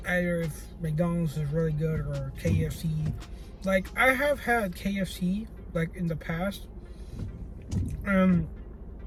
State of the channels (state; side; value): identical; both; correlation 1.00